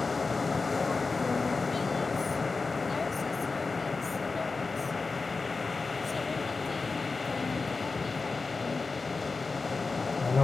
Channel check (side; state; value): right; quieter; 4.1 dB